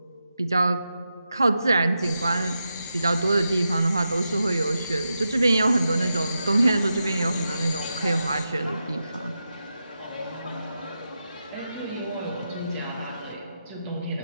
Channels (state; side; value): inverted; both; correlation -0.88